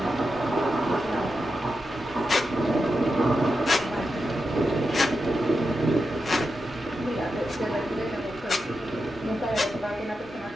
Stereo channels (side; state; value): both; normal; correlation 0.88